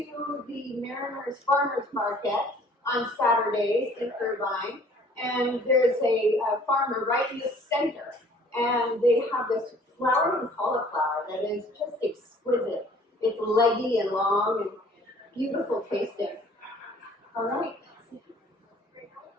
the Mariners Farmers Market on Saturdays in Irvine, and there's a farmer right in the center, and they have this flowering cauliflower that is just exquisite. It's leggy and long and beautiful tasting. All right.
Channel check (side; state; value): both; normal; correlation 0.54